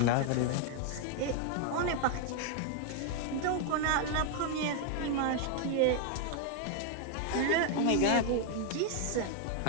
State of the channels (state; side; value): different; both; correlation 0.00